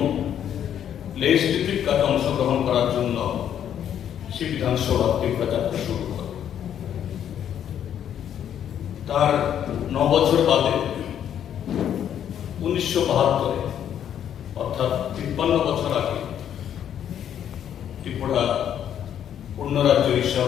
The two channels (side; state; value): right; quieter; 9.7 dB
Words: লেজিসলেটিভ কাজে অংশগ্রহণ করার জন্য সে বিধানসভা ত্রিপুরা যাত্রা শুরু করে। তার 9 বছর বাদে 1972 অর্থাৎ 53 বছর আগে ত্রিপুরা পূর্ণ রাজ্য